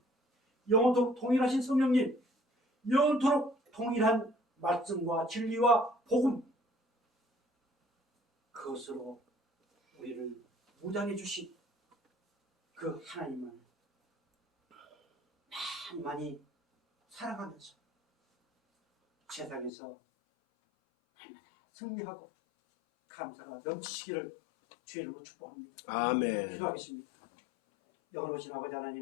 영원토록 동일하신 성령님, 영원토록 통일한 말씀과 진리와 복음, 그것으로 우리를 무장해 주신 그 하나님을 많이 사랑하면서 세상에서 날마다 승리하고 감사가 넘치시기를 주의 이름으로 축복합니다. 아멘. 기도하겠습니다. 영원하신 아버지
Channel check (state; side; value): drops out; right; at 19.7 s